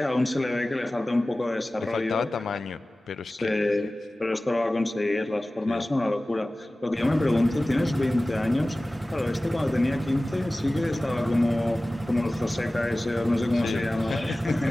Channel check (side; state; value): both; normal; correlation 0.97